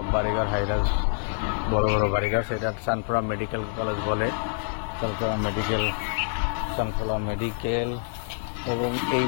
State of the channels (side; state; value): right; silent; digital silence